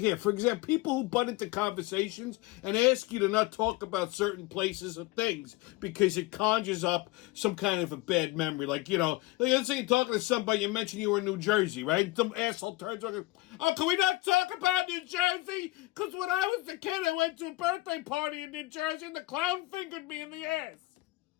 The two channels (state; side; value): quieter; right; 20.0 dB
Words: for example, people who butt into conversations and ask you to not talk about certain places or things because it conjures up some kind of a bad memory. Like, let's say you're talking to somebody, you mentioned you were in New Jersey, right? Some asshole turns around, oh, can we not talk about New Jersey? Because when I was a kid, I went to a birthday party in New Jersey and the clown fingered me in the ass.